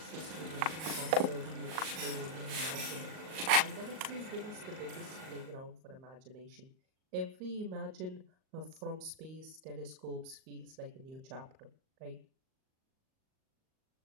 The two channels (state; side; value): late; left; 38 ms